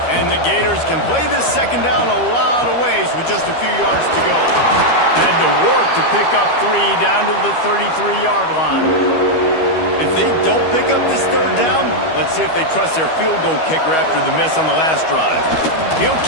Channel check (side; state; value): right; late; 13 ms